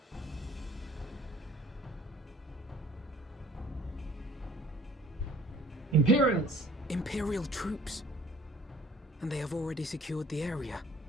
Imperials! Imperial troops. And they have already secured the area.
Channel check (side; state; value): both; normal; correlation 0.52